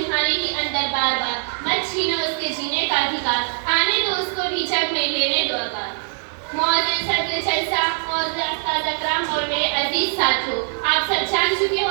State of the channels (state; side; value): silent; left; digital silence